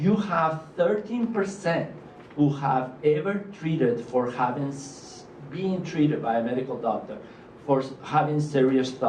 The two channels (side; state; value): both; identical; correlation 1.00